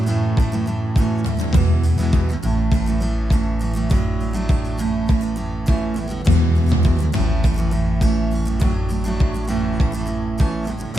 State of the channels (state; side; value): normal; both; correlation 0.87